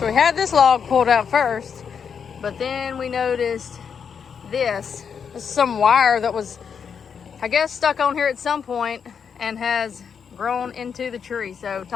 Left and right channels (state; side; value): quieter; right; 6.8 dB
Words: we had this log pulled out first, but then we noticed this. This is some wire that was, I guess, stuck on here at some point and has grown into the tree. So